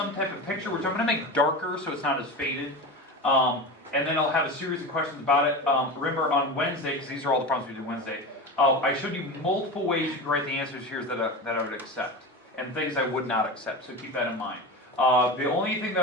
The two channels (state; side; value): normal; both; correlation 0.26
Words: type of picture, which I'm going to make darker so it's not as faded. And then I'll have a series of questions about it. Remember, on Wednesday, because these are all the problems we did Wednesday, I showed you multiple ways you can write the answers here that I would accept, and things I would not accept, so keep that in mind. The only thing